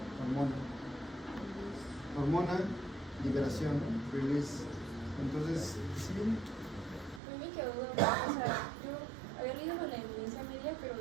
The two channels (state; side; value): drops out; left; at 7.2 s